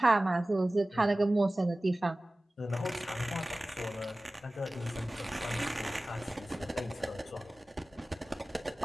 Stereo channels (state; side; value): normal; both; correlation 0.97